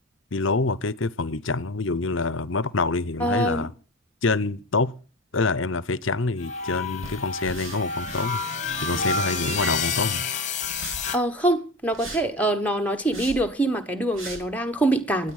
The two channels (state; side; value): normal; both; correlation 0.28